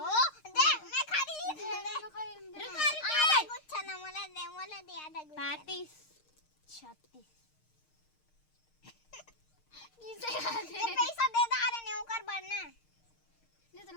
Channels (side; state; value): right; late; 6.5 ms